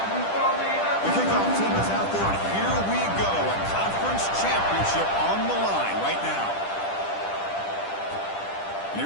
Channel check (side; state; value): right; late; 10 ms